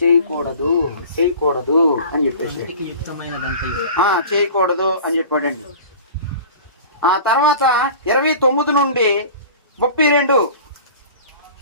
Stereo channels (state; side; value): inverted; both; correlation -0.40